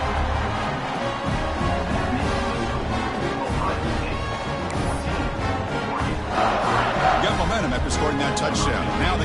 Got momentum after scoring that touchdown. Now the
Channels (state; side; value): identical; both; correlation 1.00